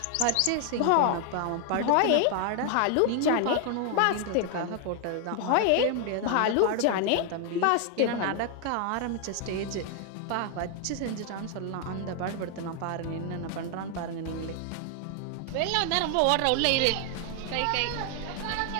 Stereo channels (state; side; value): different; both; correlation 0.00